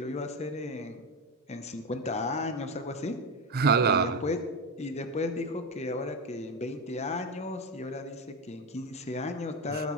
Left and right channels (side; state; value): both; normal; correlation 0.14